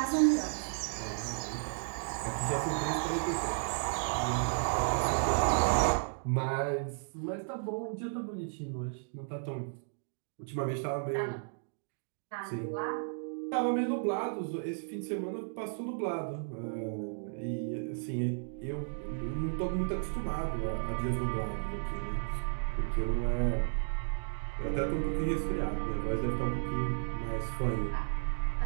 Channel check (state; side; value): silent; left; digital silence